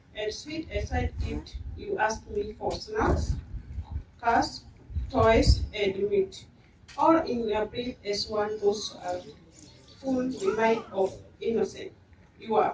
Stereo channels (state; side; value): identical; both; correlation 1.00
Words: sweet aside gift you asked me for snacks, cars, toys, and meat, all in a brief as one those are full remind of innocence. You are